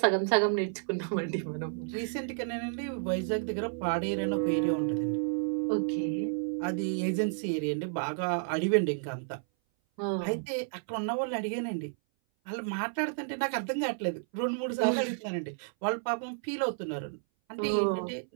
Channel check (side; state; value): left; silent; 57 dB below the other